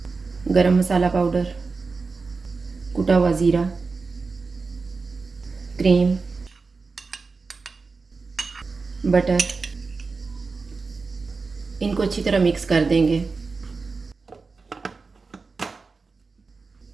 गरम मसाला पाउडर, कुटा हुआ ज़ीरा, क्रीम, बटर, इनको अच्छी तरह मिक्स कर देंगे।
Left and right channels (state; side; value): quieter; left; 4.3 dB